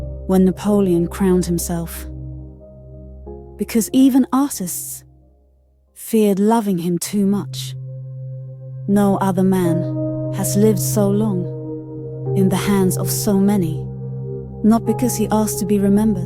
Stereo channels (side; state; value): both; identical; correlation 1.00